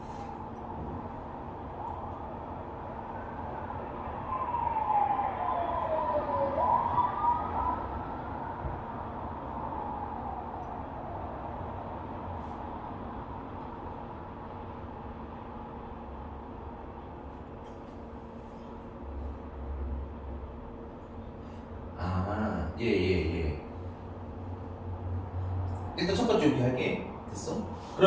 예. 일단 첫 번째 이렇게 할게. 됐어?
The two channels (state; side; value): identical; both; correlation 1.00